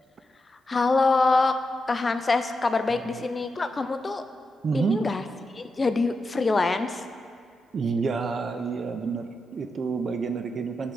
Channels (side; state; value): both; normal; correlation 0.87